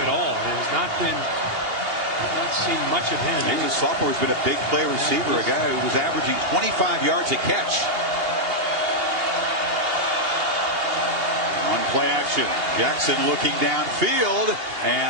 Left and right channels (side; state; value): left; late; 2.8 ms